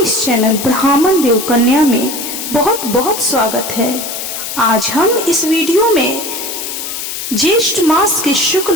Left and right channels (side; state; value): left; noise; hiss, 6 dB below the sound